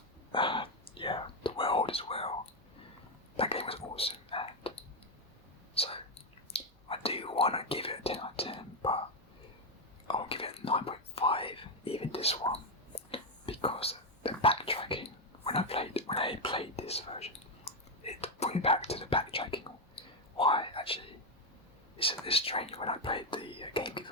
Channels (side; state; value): both; normal; correlation 0.05